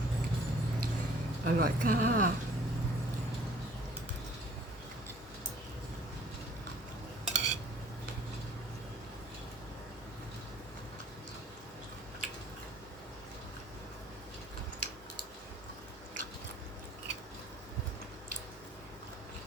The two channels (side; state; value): both; normal; correlation 0.54